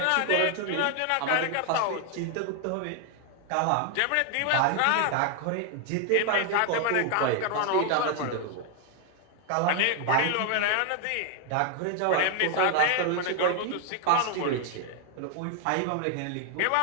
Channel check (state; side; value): different; both; correlation 0.00